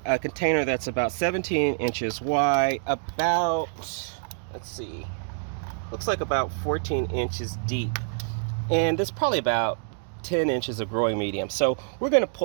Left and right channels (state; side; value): silent; left; digital silence